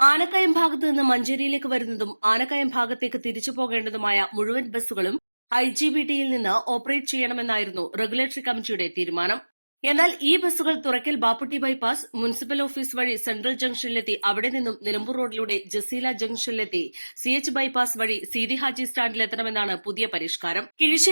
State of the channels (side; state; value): both; inverted; correlation -1.00